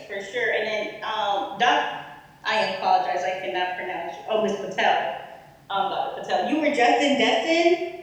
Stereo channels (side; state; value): both; identical; correlation 1.00